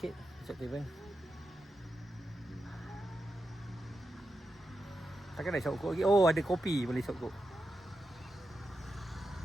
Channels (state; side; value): normal; both; correlation 0.88